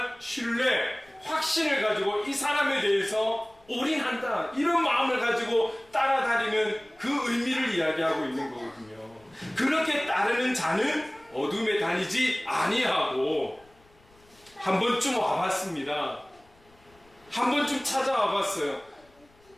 신뢰, 확신을 가지고 이 사람에 대해서 올인한다, 이런 마음을 가지고 따라다니는 그 의미를 이야기하고 있는 거거든요. 그렇게 따르는 자는 어둠에 다니지 아니하고, 한 번쯤 와봤습니다. 한 번쯤 찾아와봤어요.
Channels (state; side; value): noise; left; rumble, 30 dB below the sound